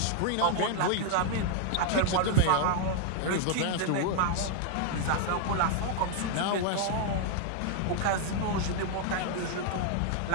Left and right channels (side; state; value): both; different; correlation 0.00